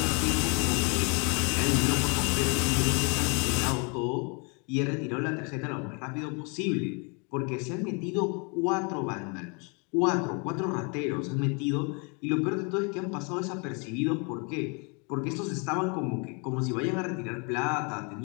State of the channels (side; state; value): right; quieter; 34.2 dB